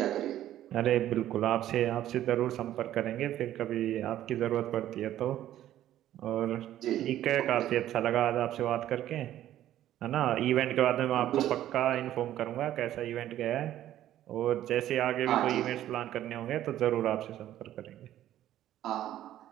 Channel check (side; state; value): left; quieter; 12.6 dB